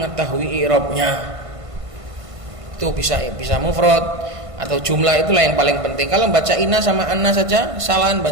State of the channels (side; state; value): left; late; 1.5 ms